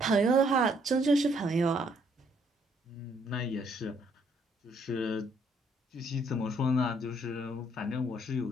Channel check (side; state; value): both; normal; correlation 0.68